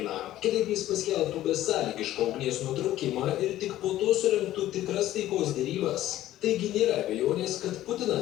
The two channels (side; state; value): right; quieter; 13.9 dB